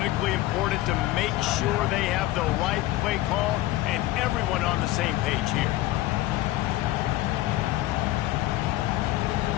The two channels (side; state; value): right; quieter; 16.2 dB